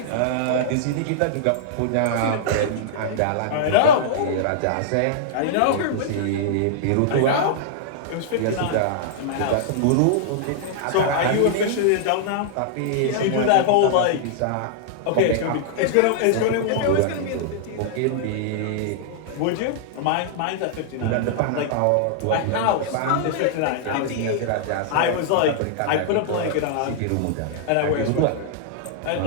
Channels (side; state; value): both; different; correlation -0.01